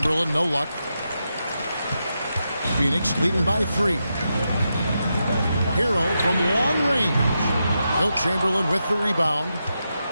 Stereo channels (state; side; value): inverted; both; correlation -0.86